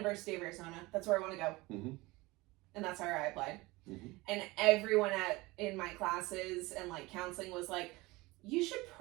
of Arizona. That's where I want to go. Mm-hmm. And that's where I applied. Mm-hmm. And everyone in my classes and like counseling was like, you should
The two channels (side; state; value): left; quieter; 21.8 dB